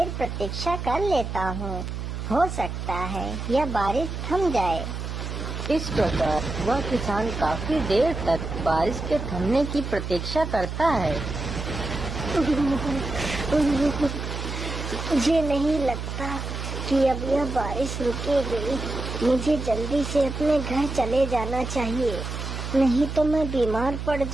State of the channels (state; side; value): noise; right; hum, 5 dB below the sound